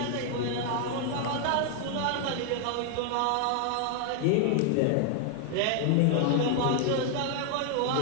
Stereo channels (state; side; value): different; both; correlation 0.00